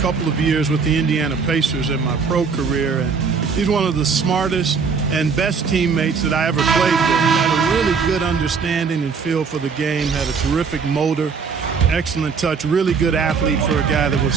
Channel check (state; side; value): quieter; left; 5.5 dB